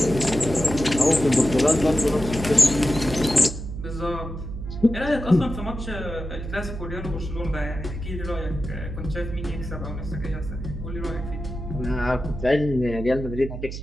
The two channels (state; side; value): noise; right; hum, 8 dB below the sound